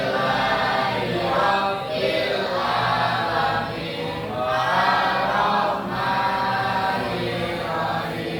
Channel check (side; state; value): both; identical; correlation 1.00